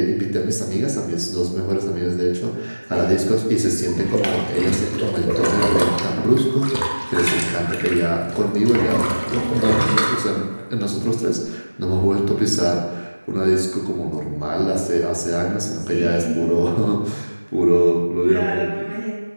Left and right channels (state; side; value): inverted; both; correlation -1.00